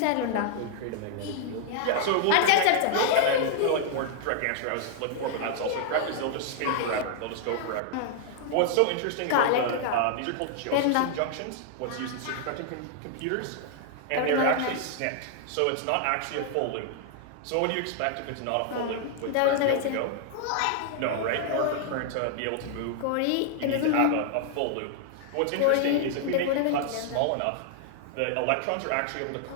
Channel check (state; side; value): different; both; correlation -0.01